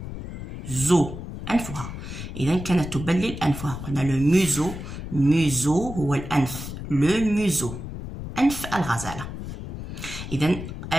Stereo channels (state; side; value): noise; left; rumble, 9 dB below the sound